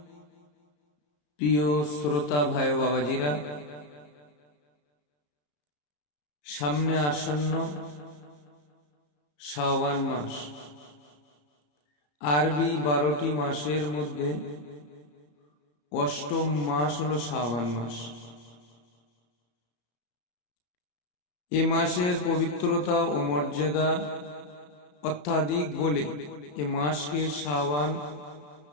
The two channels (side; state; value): right; late; 34 ms